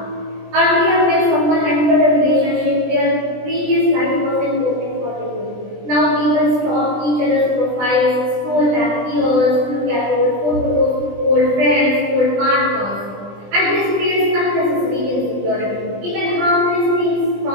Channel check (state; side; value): late; left; 20 ms